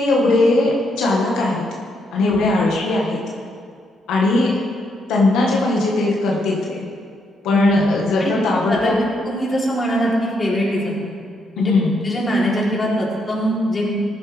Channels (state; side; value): normal; both; correlation 0.77